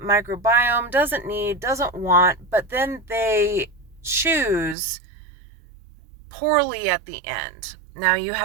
microbiome doesn't need, doesn't want, but then they choose poorly at the end. Now you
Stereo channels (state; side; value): drops out; left; at 4.8 s